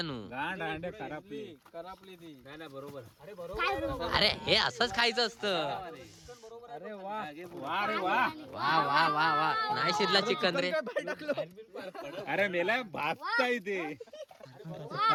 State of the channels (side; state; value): both; identical; correlation 1.00